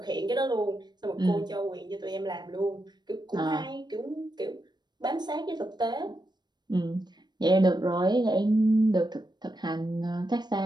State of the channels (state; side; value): late; left; 0.21 ms